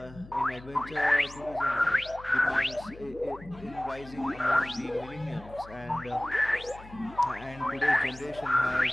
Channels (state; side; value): noise; left; hum, 18 dB below the sound